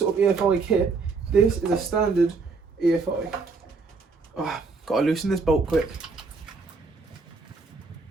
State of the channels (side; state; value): left; quieter; 4.3 dB